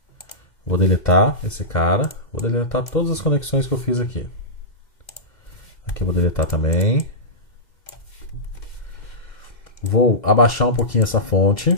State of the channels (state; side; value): late; right; 2.1 ms